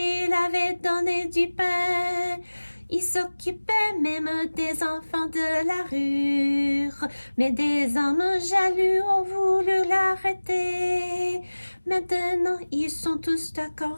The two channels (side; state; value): both; inverted; correlation -1.00